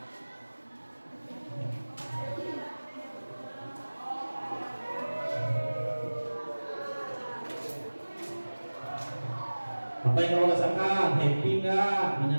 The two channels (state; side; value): inverted; both; correlation -1.00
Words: Apa yang kamu rasakan? Happy nggak?